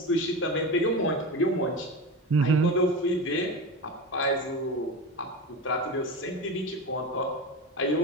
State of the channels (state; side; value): normal; both; correlation 0.24